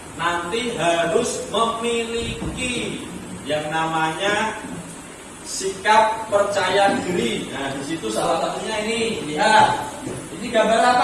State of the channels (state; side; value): identical; both; correlation 1.00